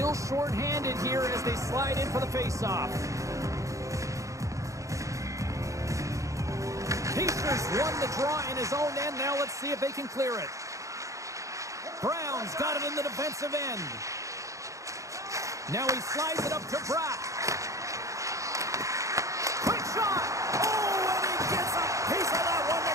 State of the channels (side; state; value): left; late; 0.15 ms